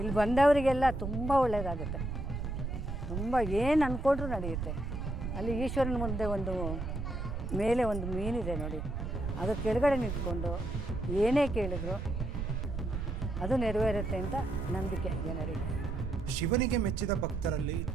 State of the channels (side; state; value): right; noise; rumble, 4 dB below the sound